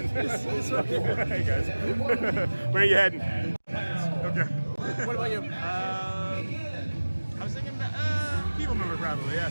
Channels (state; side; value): inverted; both; correlation -1.00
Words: Hey, guys. Where are you heading? Okay. What about you? I was thinking People Mover, probably, yeah.